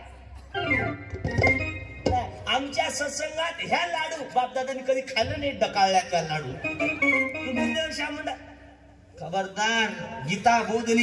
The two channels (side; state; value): both; identical; correlation 1.00